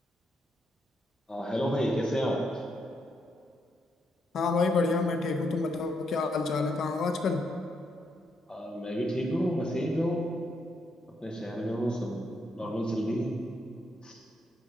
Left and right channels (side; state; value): both; normal; correlation 0.78